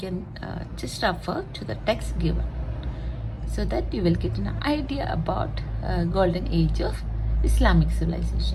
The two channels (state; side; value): identical; both; correlation 1.00